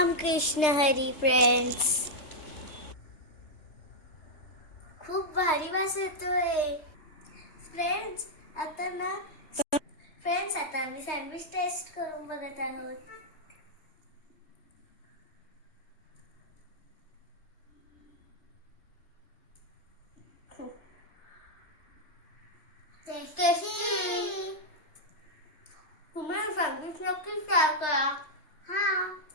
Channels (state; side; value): late; right; 3.3 ms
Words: Krishna Hari friends. खूप भारी वास येतोय फ्रेंड्स. आता आम्ही सँडविच टेस्ट करून बघत आहोत. टेस्टी. तुम्ही सँडविच नक्कीच ट्राय करा. हा,